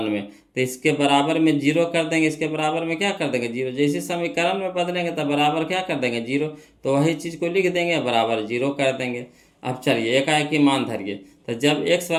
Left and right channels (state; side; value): identical; both; correlation 1.00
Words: में, तो इसके बराबर में 0 कर देंगे, इसके बराबर में क्या कर देंगे 0, जैसे समीकरण में बदलेंगे तब बराबर क्या कर देंगे 0, तो वही चीज़ को लिख देंगे बराबर 0 कर देंगे। अब चलिए एकाएक ही मान धरिए, तो जब x